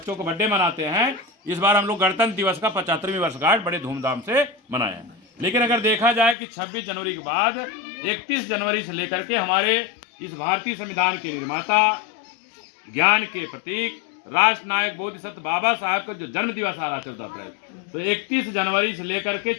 को बर्थडे मनाते हैं, इस बार हम लोग गणतंत्र दिवस का 75वीं वर्षगांठ बड़े धूमधाम से मनाए। लेकिन अगर देखा जाए कि 26 जनवरी के बाद 31 जनवरी से लेकर के हमारे इस भारतीय संविधान के निर्माता, ज्ञान के प्रतीक, राष्ट्र नायक बोधिसत्व बाबा साहब का जो जन्म दिवस आ रहा है 14 अप्रैल, तो 31 जनवरी से लेकर के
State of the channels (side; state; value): right; drops out; at 6.4 s